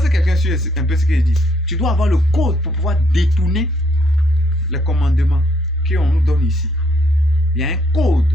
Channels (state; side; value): normal; both; correlation 0.70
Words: que quelqu'un suit un peu ce que je dis? Tu dois avoir le code pour pouvoir détourner les commandements qu'on nous donne ici. Il y a un code